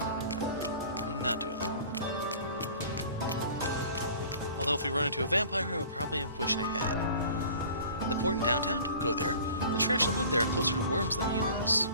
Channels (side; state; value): both; inverted; correlation -0.45